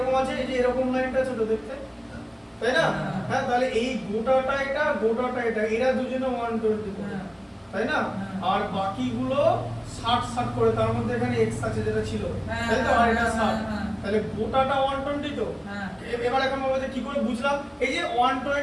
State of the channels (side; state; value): both; identical; correlation 1.00